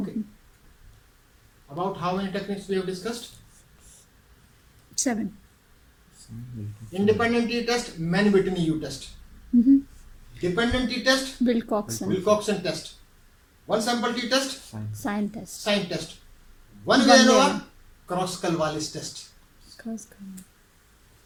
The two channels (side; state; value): both; identical; correlation 1.00